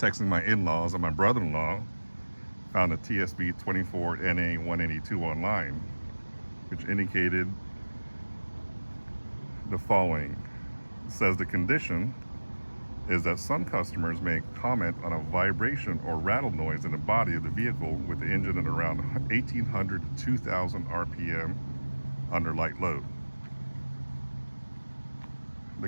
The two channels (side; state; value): both; inverted; correlation -1.00